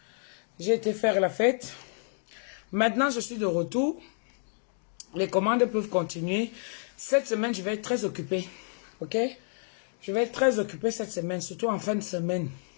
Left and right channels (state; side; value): silent; right; 58 dB below the other